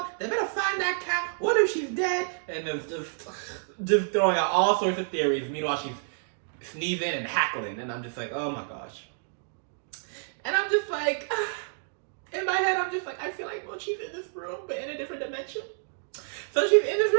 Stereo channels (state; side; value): silent; left; digital silence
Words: They better find that cat. What if she's dead? And it's just throwing out all sorts of theories. Meanwhile, she's sneezing and hackling. And I'm just like, oh my gosh. And I'm just like, in my head, I'm just like, I feel like, well, she's in this room, but in a different dimension. So she's in this